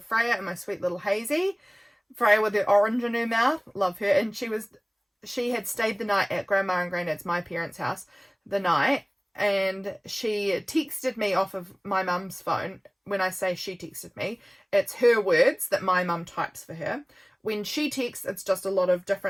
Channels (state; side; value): identical; both; correlation 1.00